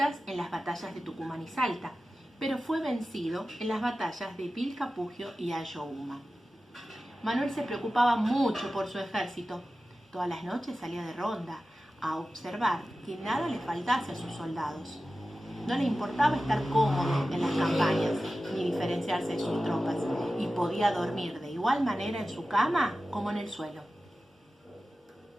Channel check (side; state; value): both; normal; correlation 0.94